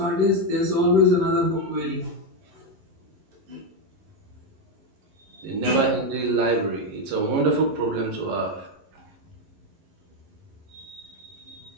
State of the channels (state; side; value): late; left; 11 ms